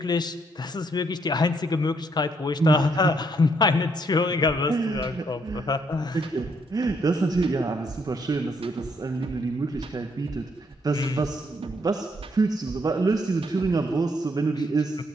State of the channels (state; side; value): normal; both; correlation 0.72